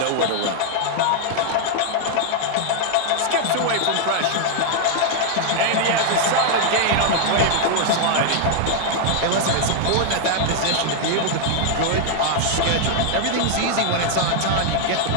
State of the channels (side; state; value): both; different; correlation 0.00